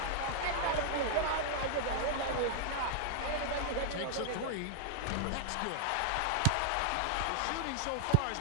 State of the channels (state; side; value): different; both; correlation -0.01